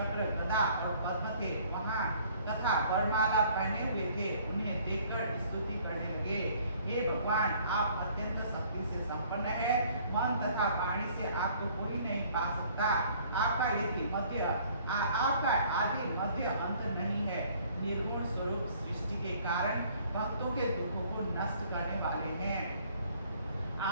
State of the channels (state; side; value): inverted; both; correlation -0.58